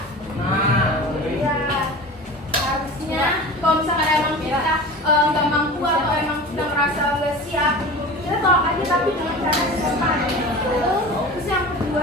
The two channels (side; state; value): both; normal; correlation 0.35